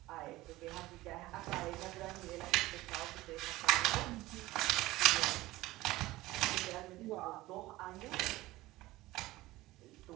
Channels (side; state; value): left; quieter; 18.2 dB